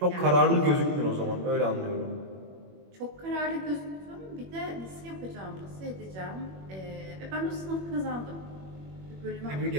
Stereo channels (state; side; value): late; left; 21 ms